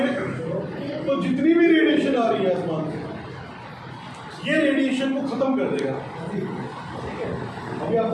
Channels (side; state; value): both; identical; correlation 1.00